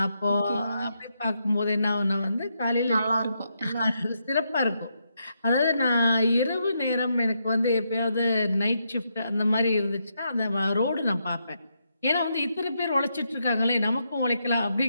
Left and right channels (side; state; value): both; inverted; correlation -0.81